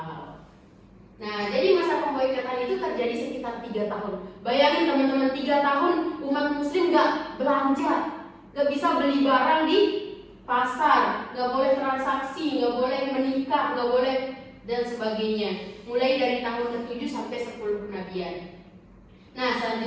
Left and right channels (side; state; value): both; identical; correlation 1.00